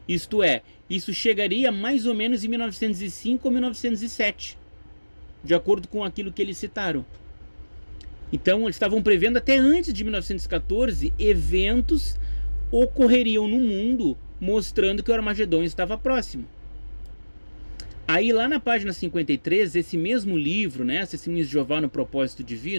Isto é, isso chegaria mais ou menos em 1905 ou 1907, de acordo com aquilo que eles citaram. Então, eles estavam prevendo até antes de 1914, eventos ocorreriam no mundo mostrando que o Armagedon estava próximo. Aí lá na página 53, esse mesmo livro, né, Testemunhos de Jeová no Propósito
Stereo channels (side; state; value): both; inverted; correlation -1.00